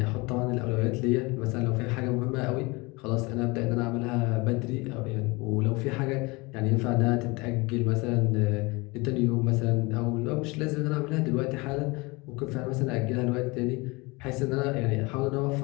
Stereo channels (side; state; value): right; quieter; 25.4 dB